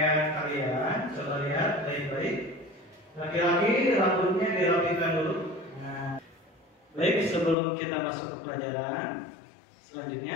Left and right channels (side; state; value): right; drops out; at 7.6 s